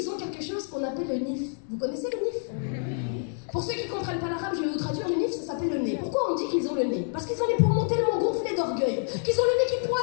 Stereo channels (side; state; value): right; silent; 60 dB below the other